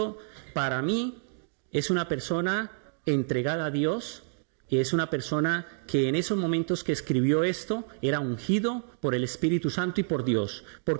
para mí, es una persona entregada a Dios, y es una persona que en esos momentos que escribió esto, era ungido por el Espíritu Santo y por Dios,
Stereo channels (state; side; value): silent; left; 59 dB below the other